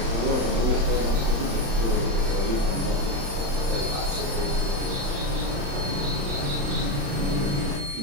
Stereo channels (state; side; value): late; left; 35 ms